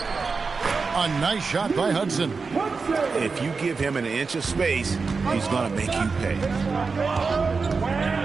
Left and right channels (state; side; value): quieter; left; 4.6 dB